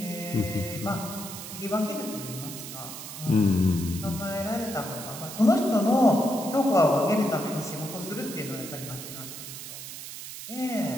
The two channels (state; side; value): noise; right; hiss, 10 dB below the sound